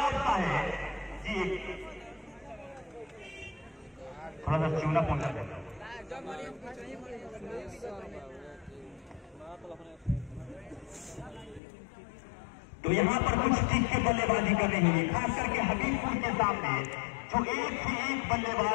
का है जी। थोड़ा सा चूना पहुंचा देता तो यहाँ पर कुछ ठीक के बल्लेबाजी कर रही है, खास करके हबीबपुर के सामने जो एक से एक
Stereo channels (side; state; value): right; drops out; at 11.6 s